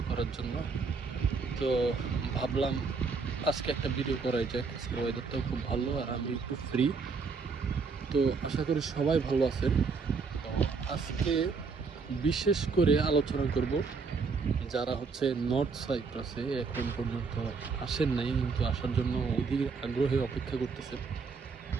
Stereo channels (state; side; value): quieter; left; 4.9 dB